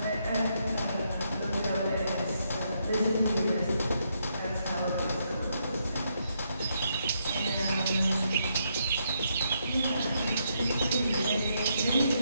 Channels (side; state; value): both; inverted; correlation -0.77